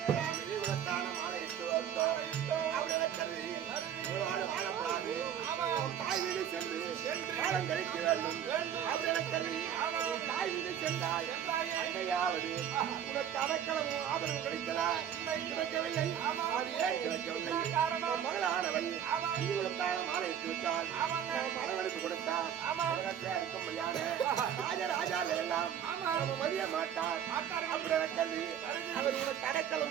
உனக்கு அடைக்கலமும் ஆதரவு கிடைத்ததா? கிடைக்கவில்லை. காரணம் மகளானவள் மாலையிட்டு விட்டால் மனவெடுப்பு கொடுத்தார். ராஜராஜால எல்லாம் மதிய மாட்டார். அப்படி கல்வி அவர் உனக்கு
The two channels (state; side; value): quieter; left; 9.4 dB